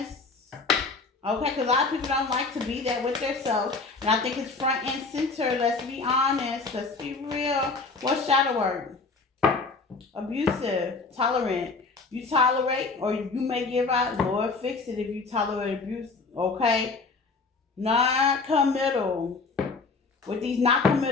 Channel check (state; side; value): quieter; right; 4.1 dB